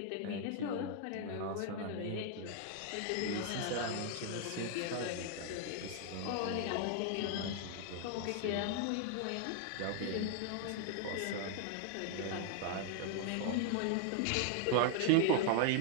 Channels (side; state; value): both; different; correlation 0.00